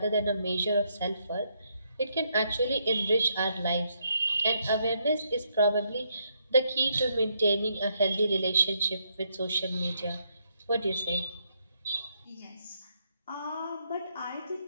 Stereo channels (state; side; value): inverted; both; correlation -0.75